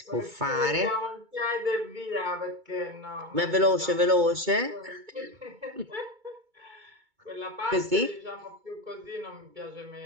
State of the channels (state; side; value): late; left; 2.2 ms